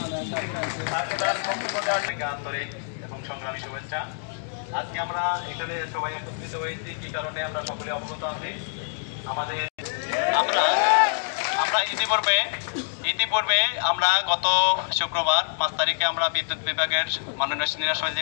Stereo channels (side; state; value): right; silent; digital silence